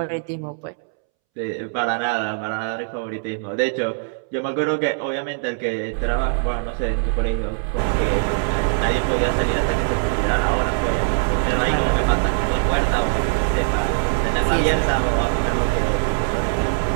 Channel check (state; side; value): silent; left; 65 dB below the other